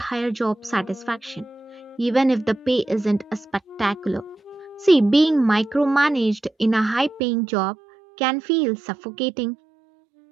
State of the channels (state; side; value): drops out; left; at 7.2 s